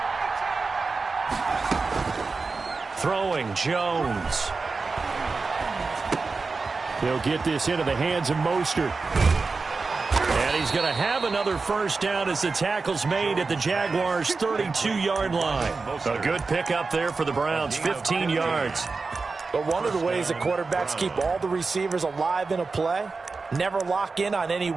Throwing Jones. He'll get this into the hands of Mostert. And he's going to have another 1st down as the tackle's made at the Jaguars' 32-yard line. A good pickup there for the Browns, 15 yards. But one of the ways that quarterbacks keep all the receivers alive in a play, never lock in on any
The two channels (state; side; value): quieter; left; 4.2 dB